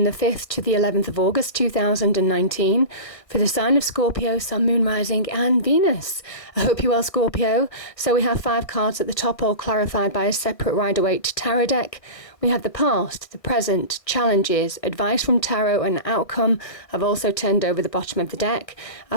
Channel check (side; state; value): right; late; 1.4 ms